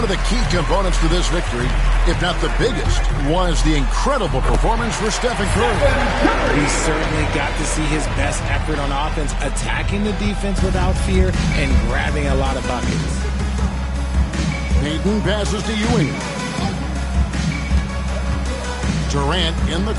of the key components to this victory, if not the biggest, was the incredible performance for Stephen Curry. He certainly got to see his best effort on offense, attacking the defense without fear and grabbing a lot of buckets. Payton passes to Ewing. Durant in the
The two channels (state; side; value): identical; both; correlation 1.00